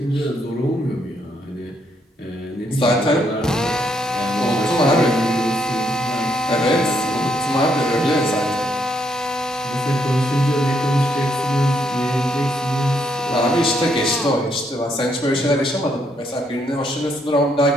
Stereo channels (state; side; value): normal; both; correlation 0.74